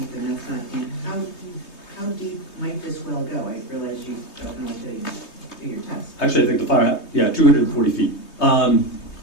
and that's not deep. How deep might this well go? I realize you don't know until you do your test. Actually, I think the firehouse, 240 feet.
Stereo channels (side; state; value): right; late; 3.2 ms